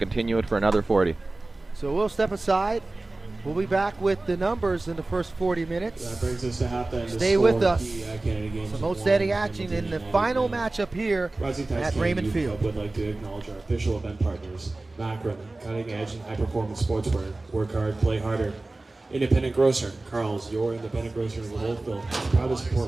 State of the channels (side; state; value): left; quieter; 3.0 dB